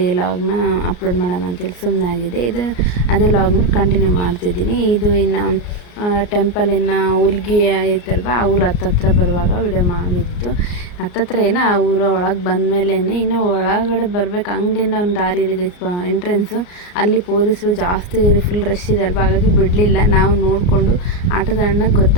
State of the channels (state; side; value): late; right; 34 ms